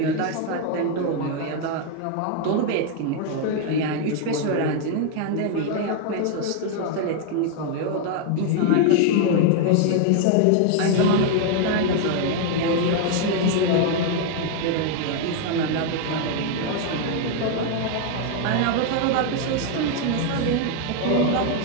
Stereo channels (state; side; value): different; both; correlation 0.00